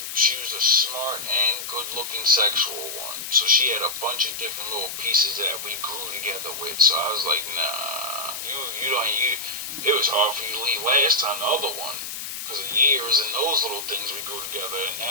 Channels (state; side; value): noise; left; hiss, 7 dB below the sound